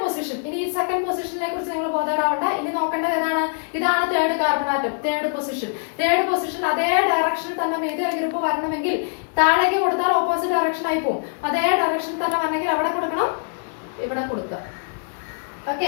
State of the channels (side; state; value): right; silent; digital silence